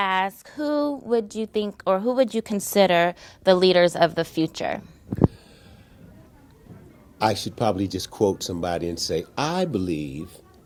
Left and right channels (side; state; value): both; identical; correlation 1.00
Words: who would you think, or who would you consider the leaders of the future? I should probably just quote somebody and say, I believe